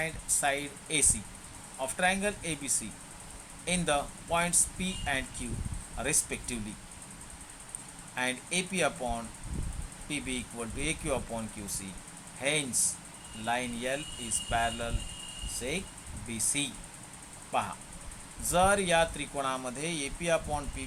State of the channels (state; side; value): identical; both; correlation 1.00